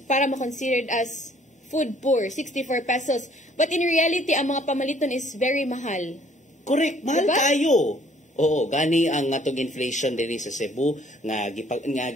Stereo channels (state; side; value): normal; both; correlation 0.60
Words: para ma-considered as food poor 64 pesos but in reality ang mga pamaliton is very mahal. Correct, mahal diba? Tayo. Oo, gani ang atong inflation diri sa Cebu nga